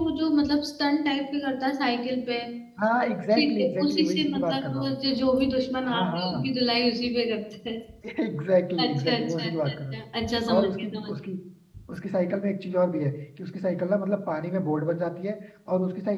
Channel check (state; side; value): identical; both; correlation 1.00